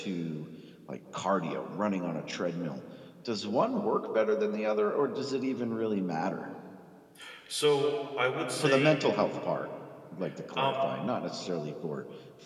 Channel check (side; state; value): both; identical; correlation 1.00